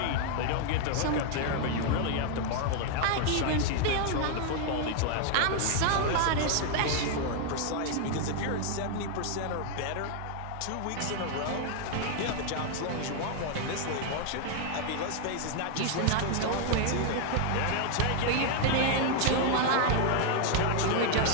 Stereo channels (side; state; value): both; different; correlation 0.00